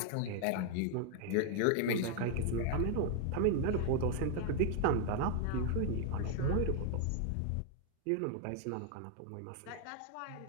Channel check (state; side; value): different; both; correlation 0.00